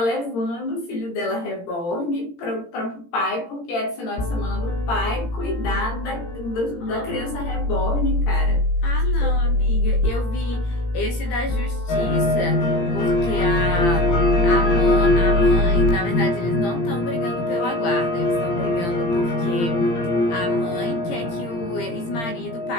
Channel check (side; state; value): right; late; 17 ms